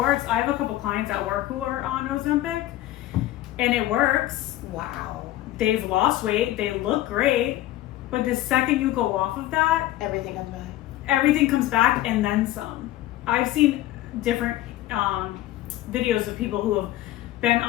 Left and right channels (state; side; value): quieter; right; 15.0 dB